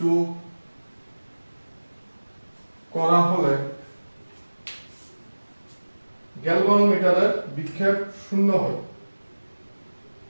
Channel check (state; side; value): inverted; both; correlation -1.00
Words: গ্যালভানোমিটারের বিক্ষেপ শূন্য হয়।